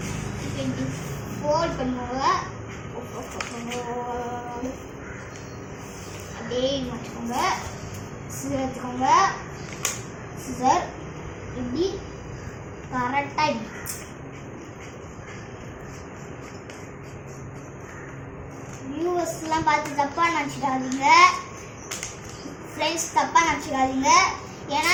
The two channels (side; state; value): both; identical; correlation 1.00